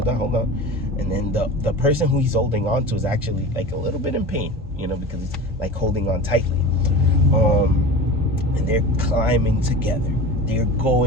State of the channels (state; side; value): normal; both; correlation 0.32